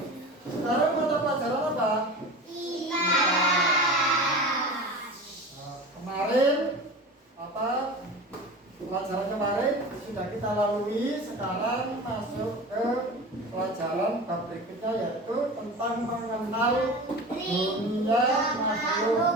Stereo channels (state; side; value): normal; both; correlation 0.33